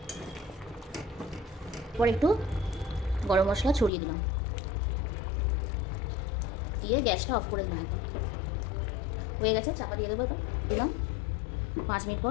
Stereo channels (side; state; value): right; drops out; at 3.9 s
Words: এরপর একটু গরম মশলা ছড়িয়ে দিলাম, দিয়ে গ্যাসটা অফ করে দিলাম একদম। হয়ে গেছে, চাপা দিয়ে দেবো। এবার দিলাম, 5 মিনিট পর